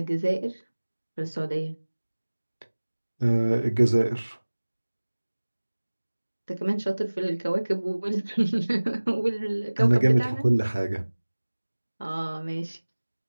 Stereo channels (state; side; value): inverted; both; correlation -1.00